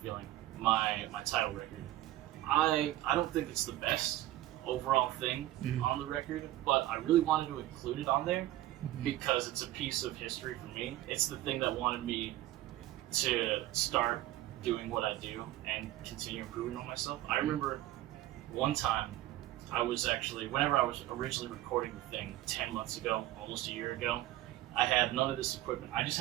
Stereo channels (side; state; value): left; quieter; 15.1 dB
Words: Feeling, my title record. I don't think it's the best overall thing on the record, but I really wanted to include it on there because it's a piece of history for me. It's the thing that wanted me to start doing what I do and continue improving on myself. I remember one time I was actually, whenever I was originally recording the thing 10 months ago, almost a year ago, I had none of this equipment. I just